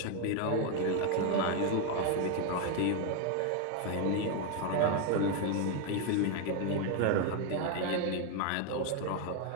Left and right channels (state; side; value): different; both; correlation 0.01